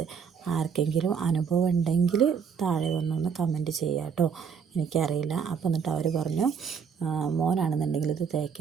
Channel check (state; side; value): quieter; left; 6.7 dB